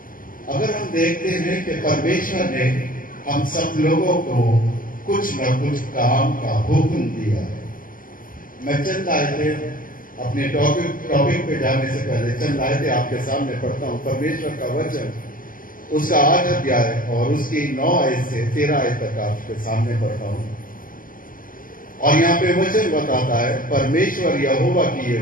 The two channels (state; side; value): late; right; 0.40 ms